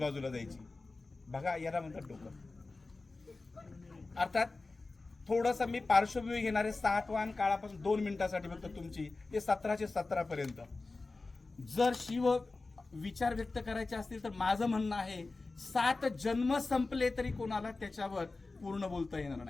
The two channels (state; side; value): quieter; right; 3.5 dB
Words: जायची. बघा, याला म्हणतात डोकं. अर्थात थोडस मी पार्श्वभूमी घेणारे सातवाहन काळापासून 2 मिनिटासाठी फक्त तुमची ते 1717 पर्यंत. जर शिव विचार व्यक्त करायचे असतील तर माझं म्हणणं आहे 7 जन्म संपले तरी कोणाला त्याच्यावर पूर्ण बोलता येणार